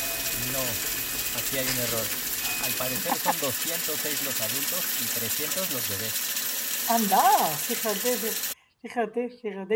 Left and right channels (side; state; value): both; identical; correlation 1.00